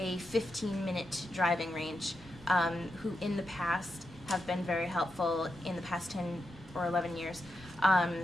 driving range who in the past have been very helpful in the past 10 or 11 years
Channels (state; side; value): normal; both; correlation 0.86